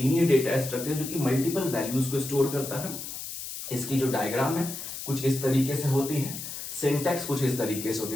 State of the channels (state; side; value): noise; left; hiss, 8 dB below the sound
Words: डेटा स्ट्रक्चर जो कि मल्टीपल वैल्यूज को स्टोर करता है। इसकी जो डायग्राम है कुछ इस तरीके से होती है, सिंटैक्स कुछ इस तरीके से होती